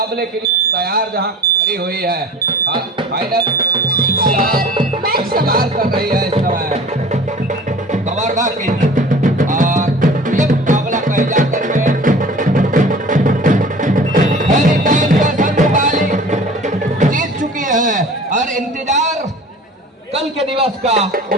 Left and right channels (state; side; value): normal; both; correlation 0.43